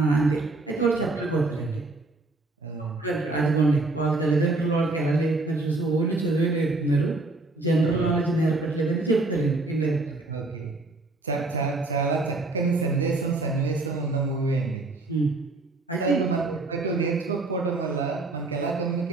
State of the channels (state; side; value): quieter; left; 3.1 dB